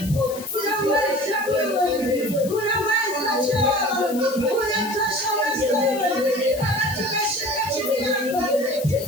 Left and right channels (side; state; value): left; noise; hiss, 14 dB below the sound